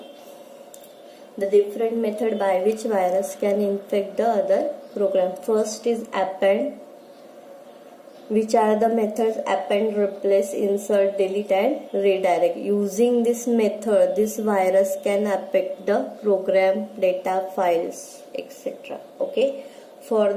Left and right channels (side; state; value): both; identical; correlation 1.00